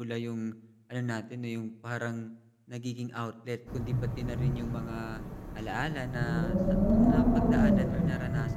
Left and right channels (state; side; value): identical; both; correlation 1.00